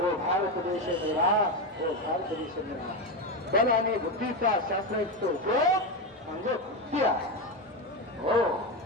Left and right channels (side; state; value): both; normal; correlation 0.13